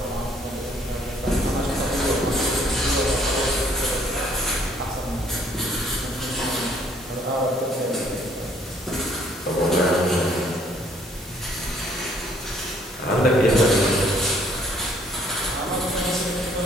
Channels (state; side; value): normal; both; correlation 0.64